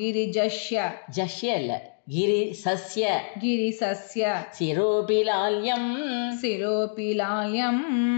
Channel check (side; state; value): right; silent; digital silence